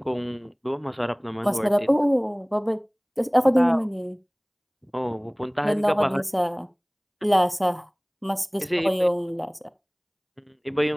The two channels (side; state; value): both; identical; correlation 1.00